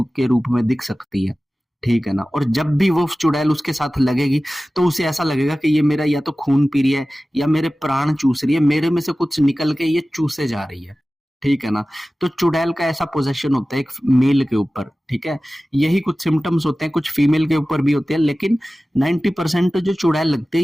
रूप में दिख सकती है, ठीक है ना। और जब भी वो चुड़ैल उसके साथ लगेगी तो उसे ऐसा लगेगा कि ये मेरा या तो खून पी रही है या मेरे प्राण चूस रही है, मेरे में से कुछ निकल के ये चूसे जा रही है, ठीक है ना। तो चुड़ैल का ऐसा पोजेशन होता है एक मेल के ऊपर, ठीक है। यही कुछ सिम्टम्स होते हैं, कुछ फीमेल के ऊपर भी होते हैं, लेकिन 90% जो चुड़ैल लगती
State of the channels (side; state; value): both; normal; correlation 0.96